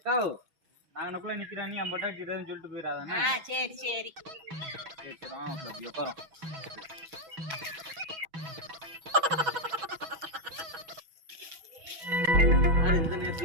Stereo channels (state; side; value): late; left; 6.2 ms